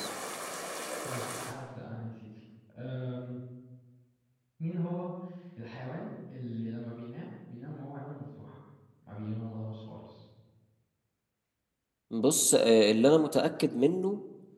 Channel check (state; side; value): identical; both; correlation 1.00